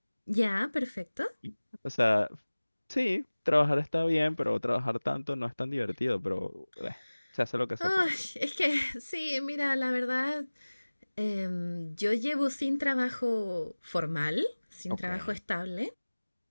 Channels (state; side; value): inverted; both; correlation -1.00